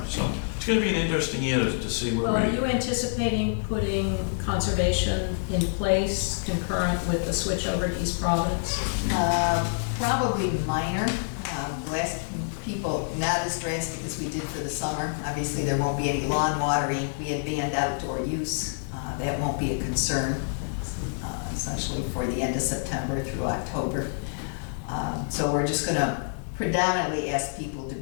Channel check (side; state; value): right; silent; digital silence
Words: So it's going to be an interesting year to see where Well, are you anticipating putting conservation in place concurrent with the switch over to East Providence? Probably minor. Last people, not as drastic as we did for the summer. Obviously, there won't be any lawn watering. We had banned outdoor use. That won't be a concern, essentially for the end of September through October. So we're just going to predominantly ask people to